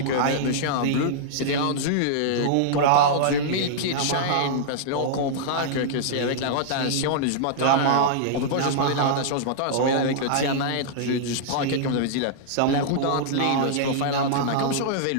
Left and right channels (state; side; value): different; both; correlation -0.02